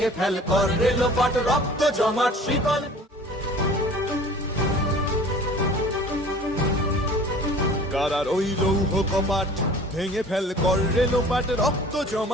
ফেল কর রেলোপাট, রক্ত জমাট শিকল। কারা রইল কপাট, ভেঙে ফেল কর রেলোপাট, রক্ত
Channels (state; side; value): normal; both; correlation 0.46